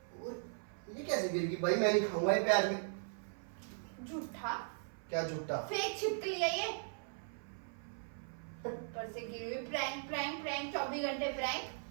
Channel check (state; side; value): silent; left; 52 dB below the other